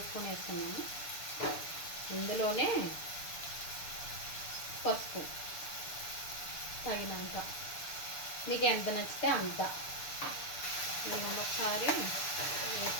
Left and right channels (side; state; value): right; late; 6.8 ms